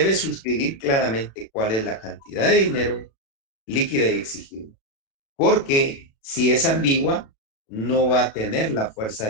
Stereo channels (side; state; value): right; late; 36 ms